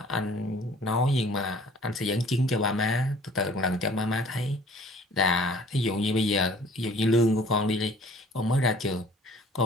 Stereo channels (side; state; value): both; normal; correlation 0.52